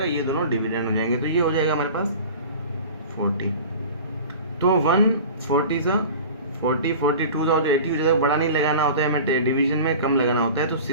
ये दोनों डिविडेंड हो जाएंगे, तो ये हो जाएगा हमारे पास 40। तो 140 सा 40 42 सा 80 हो जाएगा। बड़ा नहीं लगाना होता है, हमें डिवीजन में कम लगाना होता है। तो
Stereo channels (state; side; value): inverted; both; correlation -0.38